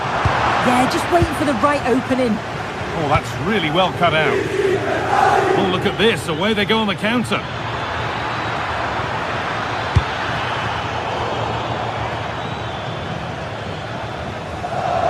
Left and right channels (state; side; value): identical; both; correlation 1.00